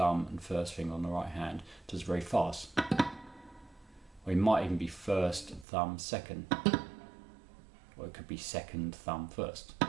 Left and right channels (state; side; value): drops out; left; at 5.7 s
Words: and 1st finger on the right hand, does very fast. Or he might even be 1st, thumb, 2nd. Or it could be 2nd, thumb, 1st.